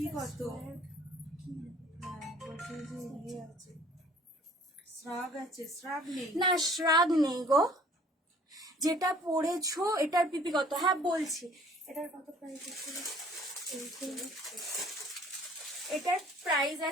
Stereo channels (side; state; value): both; normal; correlation 0.54